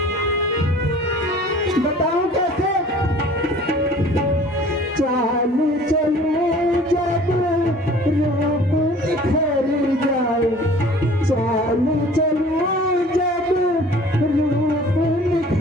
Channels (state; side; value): normal; both; correlation 0.48